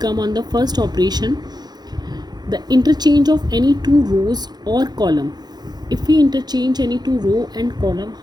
on the first operation. The interchange of any two rows or column. If we interchange any two row and column,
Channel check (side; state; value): left; late; 0.20 ms